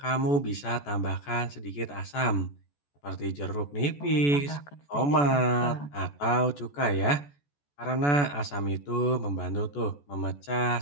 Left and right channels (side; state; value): right; late; 14 ms